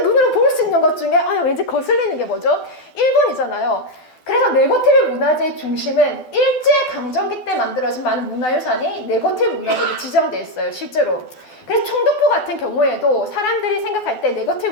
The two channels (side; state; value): right; late; 12 ms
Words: 눈으로 볼 수 있는 것 중에 왠지 거슬리는 게 뭐죠? 일본이잖아요. 그래서 네거티브 문화재의 중심은 일제강점기 때 만들어진 많은 문화유산이 네거티브 문화재로 지정되어 있어요. 실제로. 그래서 총독부 같은 경우에도 사람들이 생각할 때 네거티브